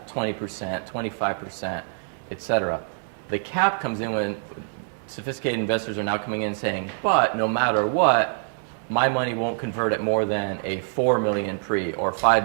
20%, 25%, etc. The cap comes in when sophisticated investors are now coming in saying, but no matter what, my money won't convert at more than a 4 million pre or 5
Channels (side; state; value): left; silent; digital silence